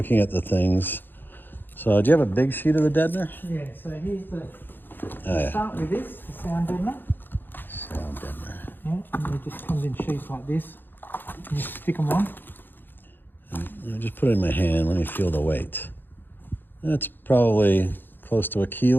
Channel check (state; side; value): late; right; 0.095 ms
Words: at the things. So do you have a big sheet of the deadener? Yeah, so here's the Oh, yeah. start with this, the sound deadener. Sound deadener. Yeah, and it just comes in sheets like this. And you stick them on. I just put it in my hand. Let me feel the weight. That's probably close to a